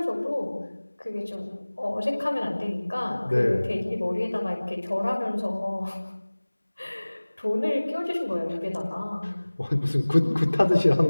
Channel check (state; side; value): inverted; both; correlation -1.00